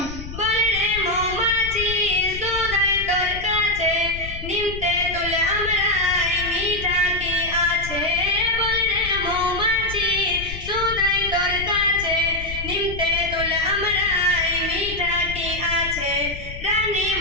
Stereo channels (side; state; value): left; noise; rumble, 10 dB below the sound